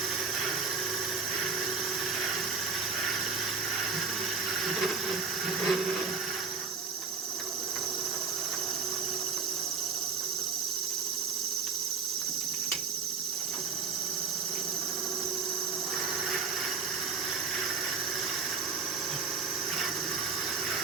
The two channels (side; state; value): left; quieter; 5.4 dB